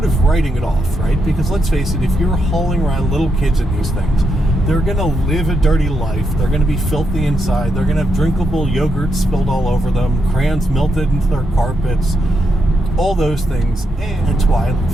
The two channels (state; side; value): normal; both; correlation 0.82